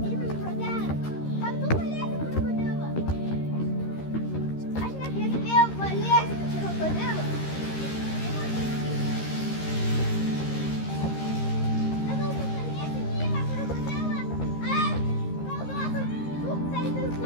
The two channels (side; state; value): right; late; 13 ms